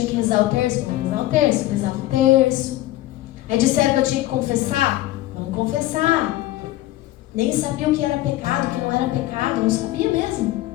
que rezar o terço, vamos rezar o terço, rezava o terço. Aí disseram que eu tinha que confessar, vamos confessar. Nem sabia o que era pecado, o que não era pecado, não sabia mesmo.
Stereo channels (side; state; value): right; quieter; 16.0 dB